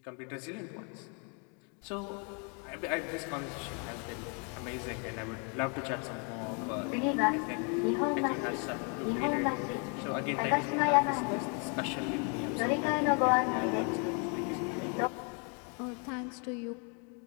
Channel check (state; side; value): quieter; right; 37.2 dB